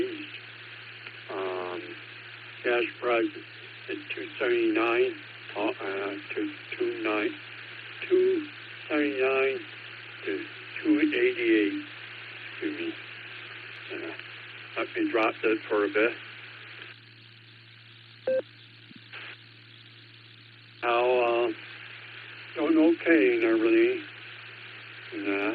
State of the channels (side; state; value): both; identical; correlation 1.00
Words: Gas price is $2.79 to $2.79 to $2.88. Excuse me. I've been dropped it for a bit. Now, doing okay and everything.